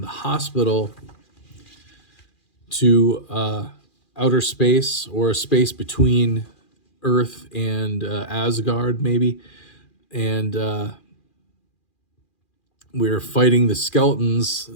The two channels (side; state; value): right; late; 2.4 ms